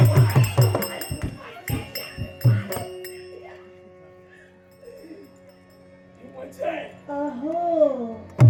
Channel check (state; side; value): identical; both; correlation 1.00